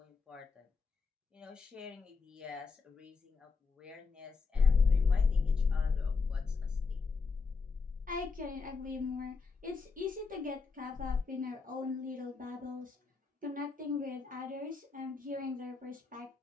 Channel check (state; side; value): quieter; right; 4.7 dB